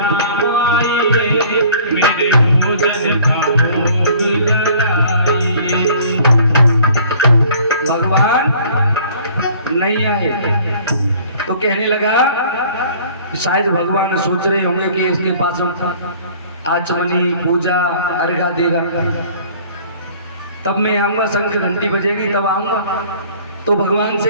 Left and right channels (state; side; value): inverted; both; correlation -0.52